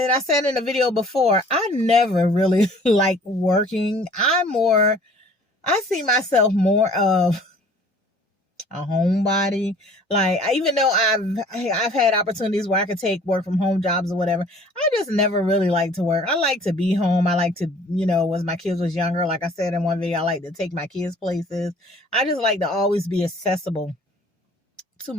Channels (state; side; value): normal; both; correlation 0.51